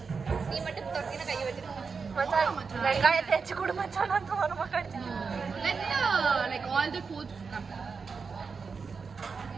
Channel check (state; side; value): quieter; left; 5.2 dB